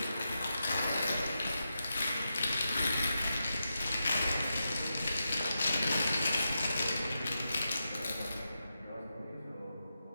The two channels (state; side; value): inverted; both; correlation -0.88